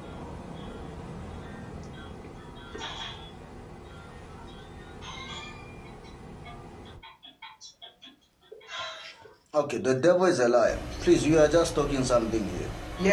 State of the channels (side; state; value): both; identical; correlation 1.00